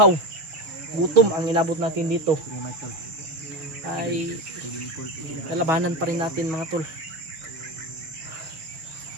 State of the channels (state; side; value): late; left; 6.3 ms